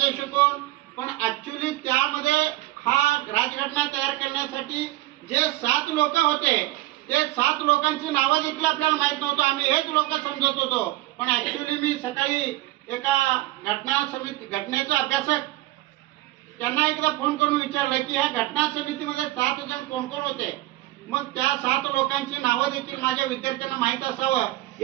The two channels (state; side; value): quieter; left; 17.2 dB